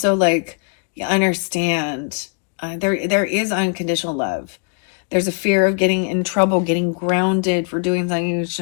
like, you understand there is unconditional love. There's a fear of getting in trouble, getting grounded for doing something you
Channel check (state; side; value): quieter; right; 38.4 dB